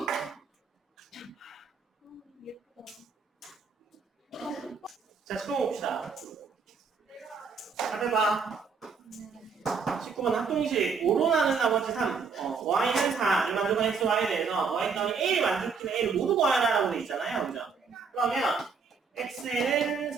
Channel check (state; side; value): quieter; left; 5.3 dB